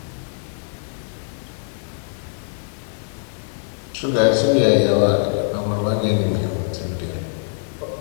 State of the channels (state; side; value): silent; right; digital silence